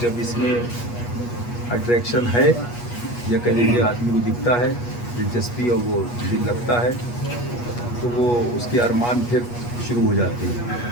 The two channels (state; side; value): late; right; 8.3 ms